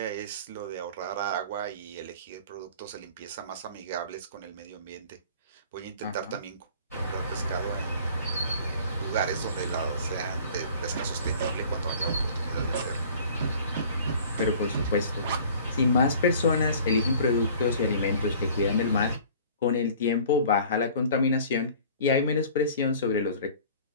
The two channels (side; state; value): both; inverted; correlation -0.48